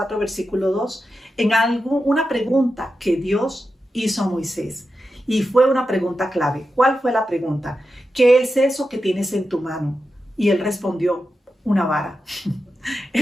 versículo 2, una pregunta que Dios hizo a Moisés. Y fue una pregunta clave. ¿Cuál fue la pregunta? ¿Qué es eso que tienes en tu mano? Y él respondió, una vara.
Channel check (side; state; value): both; normal; correlation 0.90